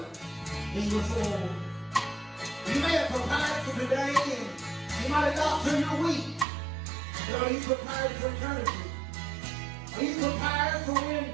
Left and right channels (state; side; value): drops out; left; at 6.5 s